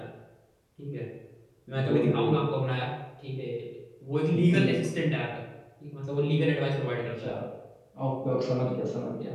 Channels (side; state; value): both; identical; correlation 1.00